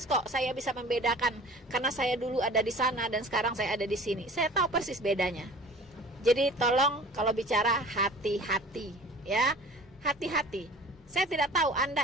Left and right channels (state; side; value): normal; both; correlation 0.44